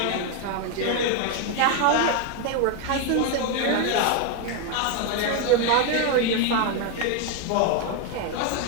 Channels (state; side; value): different; both; correlation 0.01